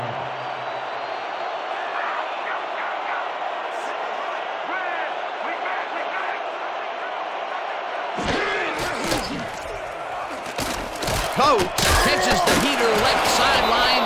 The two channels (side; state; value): both; identical; correlation 1.00